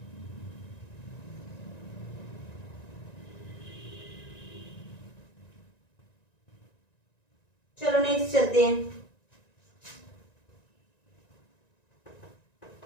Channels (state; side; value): late; right; 1.9 ms